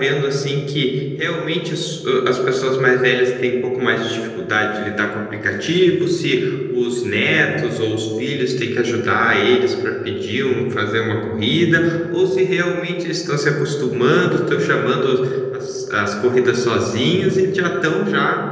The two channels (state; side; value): identical; both; correlation 1.00